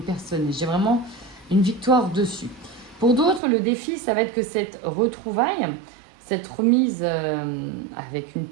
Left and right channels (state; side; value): drops out; left; at 3.4 s